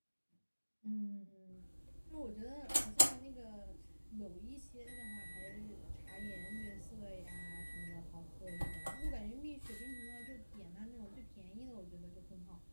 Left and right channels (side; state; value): both; inverted; correlation -1.00